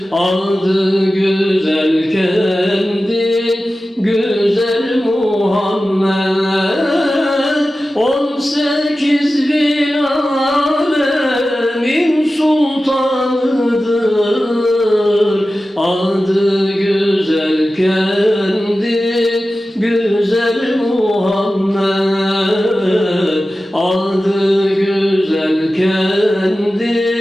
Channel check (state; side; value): normal; both; correlation 0.95